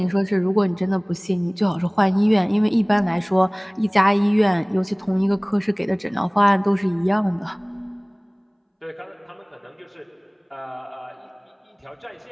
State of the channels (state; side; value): identical; both; correlation 1.00